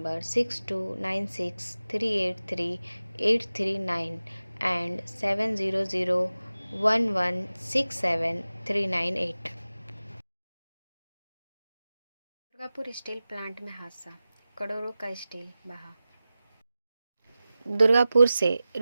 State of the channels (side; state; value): both; inverted; correlation -0.95